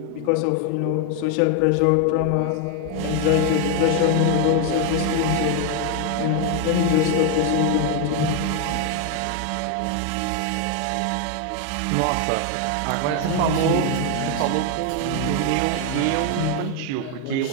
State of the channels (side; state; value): both; different; correlation 0.01